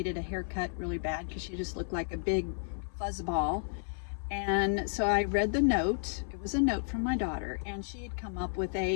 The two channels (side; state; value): right; silent; 56 dB below the other